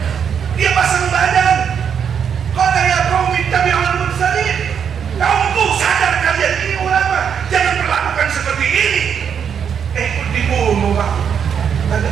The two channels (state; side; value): quieter; left; 7.6 dB